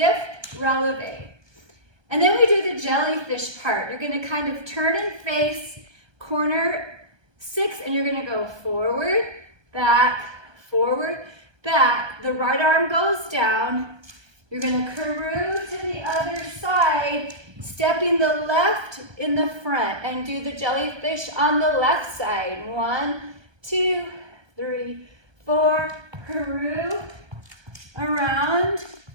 releve. And then we do the jellyfish part. You're going to kind of turn and face corner 6, and you're going to go forward, back, back. The right arm goes down. You're going to caroo to the other side, stepping the left in the front, and do the jellyfish on the left side. 1, 2, 3, 4, caroo, around.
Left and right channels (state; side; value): late; left; 1.2 ms